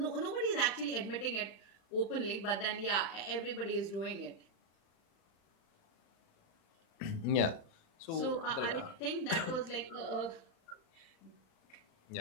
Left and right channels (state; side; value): late; right; 35 ms